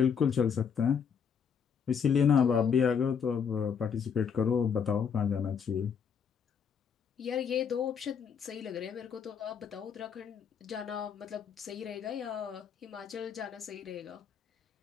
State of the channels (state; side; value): quieter; right; 7.0 dB